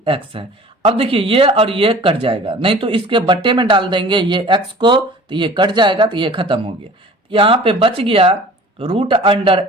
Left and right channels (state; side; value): normal; both; correlation 0.45